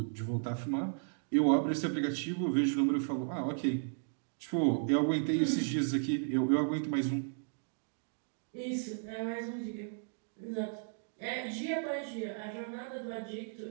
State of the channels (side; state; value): left; silent; digital silence